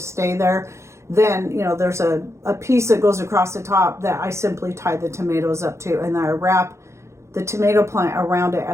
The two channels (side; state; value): left; late; 0.14 ms